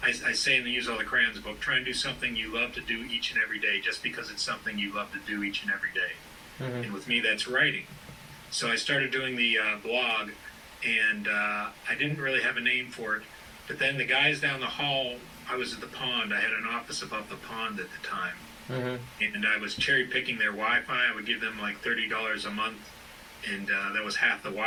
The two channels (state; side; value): identical; both; correlation 1.00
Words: I say in the Use All the Crayons book, try and do something you love to do each and every day, just because it's something you love to do each and every day. Mm-hmm. And with me, that's writing. So I started doing the blog, and I didn't really have a name for it. But then the guys down the hall, I was at the pond. I had an office above the pond at the time. And I was cherry picking their Wi-Fi. I would give them like $30 a month, and that was half the